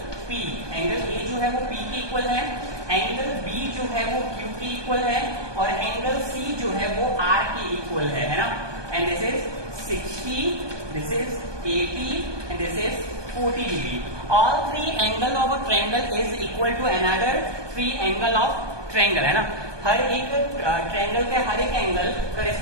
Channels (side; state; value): left; late; 1.2 ms